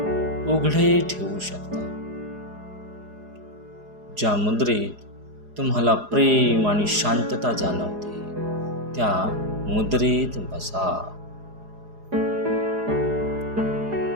उघडे ठेवू शकता. ज्या मुद्रेत तुम्हाला प्रेम आणि शांतता जाणवते त्या मुद्रेत बसा.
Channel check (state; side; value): late; left; 4.8 ms